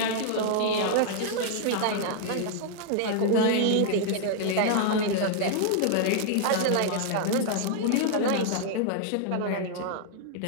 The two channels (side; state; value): both; different; correlation -0.01